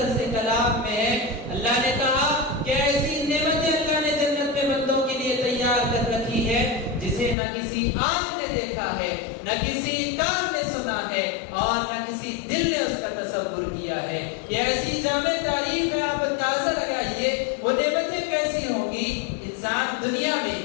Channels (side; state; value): right; drops out; at 7.4 s